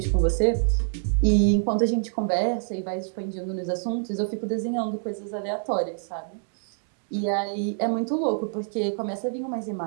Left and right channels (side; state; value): left; silent; digital silence